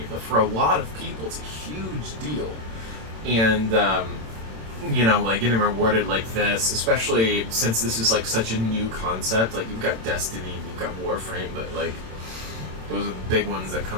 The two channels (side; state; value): left; late; 27 ms